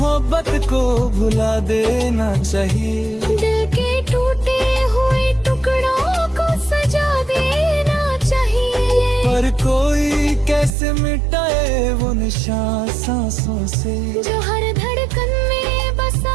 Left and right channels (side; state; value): left; drops out; at 10.7 s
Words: को भुला देना चाहिए, दिल के टूटे हुए टुकड़ों को सजा देना चाहिए। पर कोई कैसे मिटाए वो निशान सांसों से, जो हर धड़कन में बसा